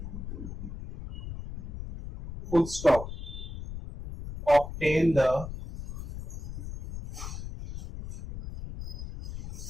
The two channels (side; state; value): left; noise; rumble, 8 dB below the sound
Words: full stop. Obtain the